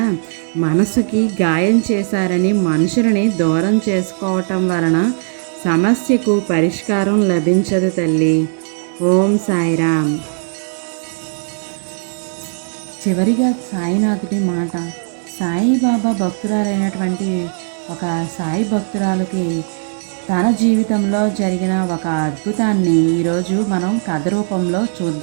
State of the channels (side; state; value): left; silent; digital silence